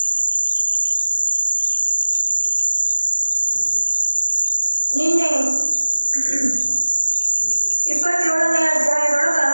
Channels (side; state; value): both; inverted; correlation -1.00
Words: ನಿನ್ನೆ 27ನೇ ಅಧ್ಯಾಯದೊಳಗ